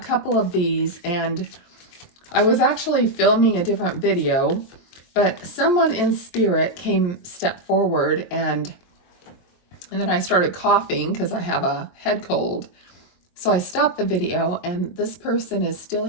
of these and I was actually filming a different video, but someone in spirit stepped forward and then I started coughing because I have a head cold. So I stopped the video and this person is still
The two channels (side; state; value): right; late; 23 ms